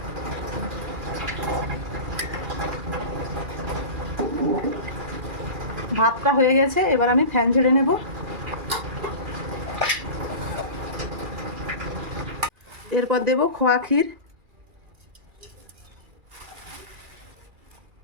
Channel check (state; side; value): late; left; 2.4 ms